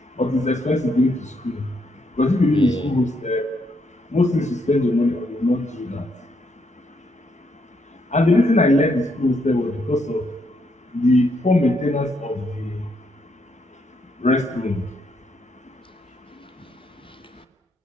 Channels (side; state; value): both; normal; correlation 0.75